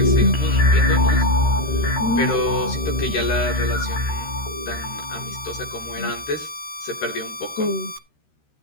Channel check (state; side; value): late; right; 13 ms